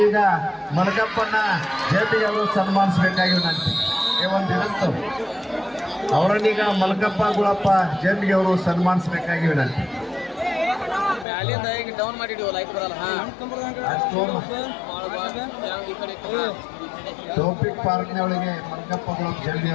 ಮಲಕಪ್ಪನ ಜಯಂತಿಗೆ ಅವರು ಸನ್ಮಾನಿಸಬೇಕಾಗಿ ವಿನಂತಿ. ಒಂದಿನಂತು ಅವರನ್ನೀಗ ಮಲಕಪ್ಪ ಗುಳಪ್ಪ ಜಯಂತಿಗೆ ಅವರು ಸನ್ಮಾನಿಸಬೇಕಾಗಿ ವಿನಂತಿ. ಡೌನ್ ಮಾಡಿಡಿವ ಲೈಕ್ ಬರಲ್ಲ. ಟೋಪಿಕ್ ಪಾರ್ಕ್ನವಳಿಗೆ ಮಲಕಪ್ಪ ಗುಳಪ್ಪ ಜಯಂತಿ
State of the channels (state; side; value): drops out; right; at 11.2 s